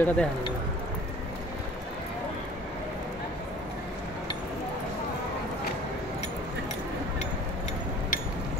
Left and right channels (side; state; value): both; normal; correlation 0.48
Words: ওটা দেখা নেই